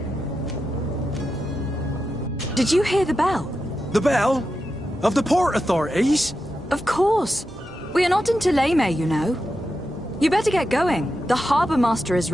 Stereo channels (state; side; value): normal; both; correlation 0.89